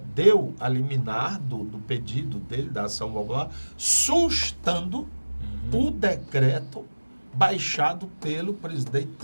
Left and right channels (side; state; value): both; inverted; correlation -1.00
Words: deu a liminar do pedido dele, da ação popular, sustando o decreto baixado pelo presidente